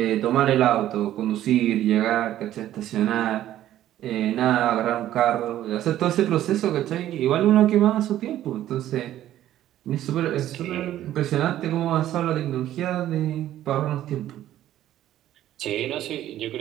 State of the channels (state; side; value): quieter; left; 12.8 dB